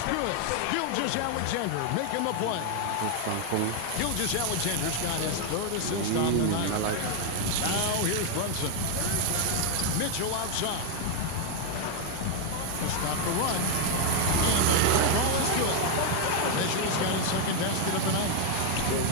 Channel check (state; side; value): different; both; correlation 0.01